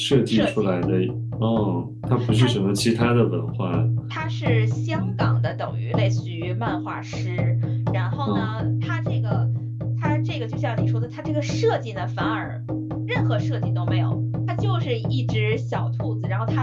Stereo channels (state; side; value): identical; both; correlation 1.00